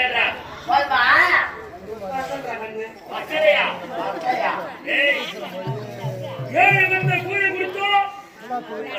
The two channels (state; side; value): identical; both; correlation 1.00